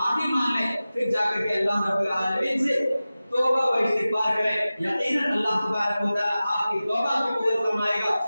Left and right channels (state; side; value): inverted; both; correlation -0.96